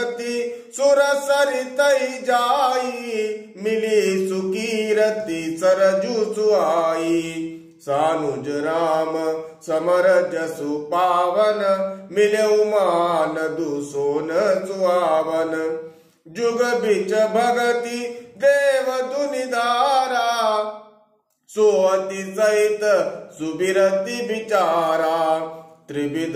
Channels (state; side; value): identical; both; correlation 1.00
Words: सुर सरितई जाई मिली सुकीरति सरजु सुहाई। सानुज राम समर जसु पावन मिले मान दुसोन सुहावन। जुग बिच भगति देव दुनिधारा सोअति सहित सुबिरति विचारा। त्रिविध